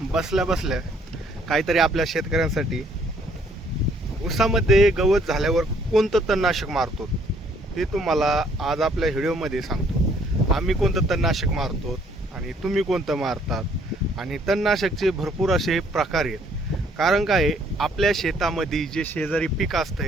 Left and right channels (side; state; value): both; normal; correlation 0.64